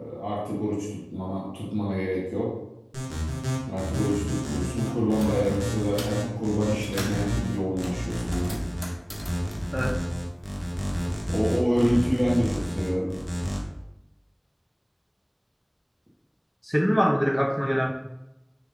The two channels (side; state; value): both; identical; correlation 1.00